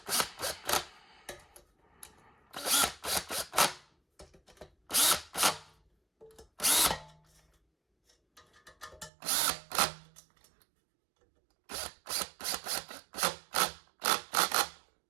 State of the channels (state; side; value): drops out; left; at 9.1 s